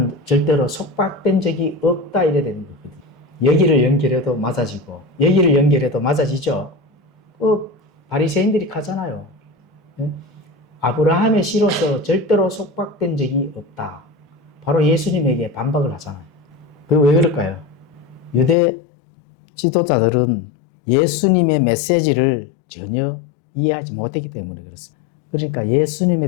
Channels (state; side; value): drops out; right; at 18.6 s